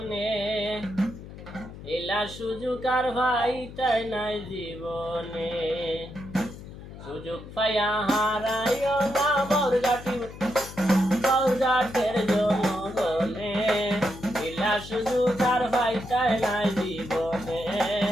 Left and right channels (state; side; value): noise; left; hum, 14 dB below the sound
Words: এলা সুযোগ আর ভাই তাই নাই জীবনে। সুযোগ পাইয়া হারাইও না বাউরঘাটের জনগণে, এলা সুযোগ আর ভাই তাই নাই জীবনে,